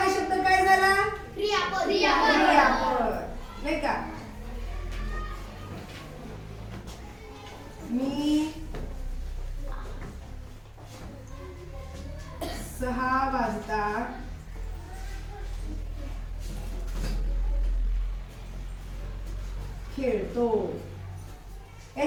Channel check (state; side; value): identical; both; correlation 1.00